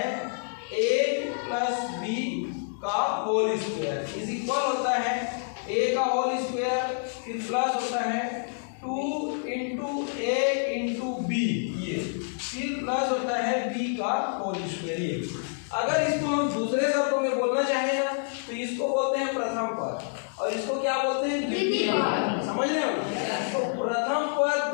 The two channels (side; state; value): right; silent; digital silence